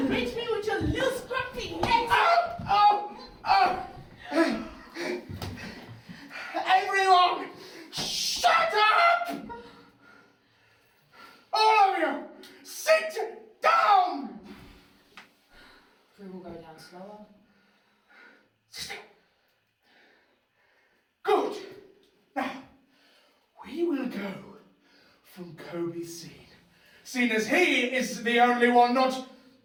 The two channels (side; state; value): both; identical; correlation 1.00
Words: reach me with your little scrumpy legs. Everyone, shut up! All of you, sit down! Prue will go down slower. Good. Now, we will go from Kobe's scene. Seeing as he is the only one not